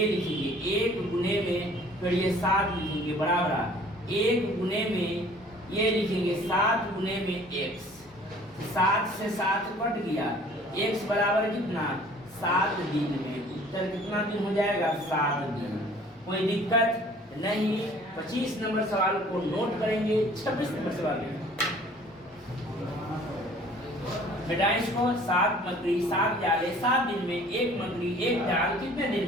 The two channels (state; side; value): normal; both; correlation 0.52